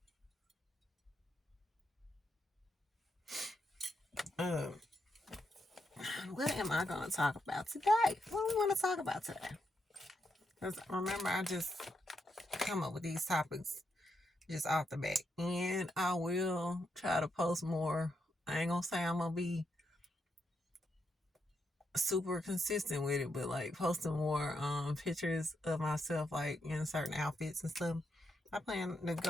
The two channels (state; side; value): normal; both; correlation 0.82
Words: Um, what am I gonna talk about today? What do we want to talk about today? Because remember, I just come up with these topics just off the bat. And I will try to post more. I ain't gonna say I'm gonna be super consistent with it, but like posting more pictures of myself like in certain outfits and stuff. I plan to